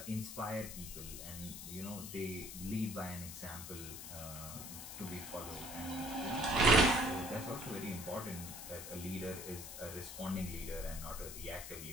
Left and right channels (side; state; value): left; noise; hiss, 9 dB below the sound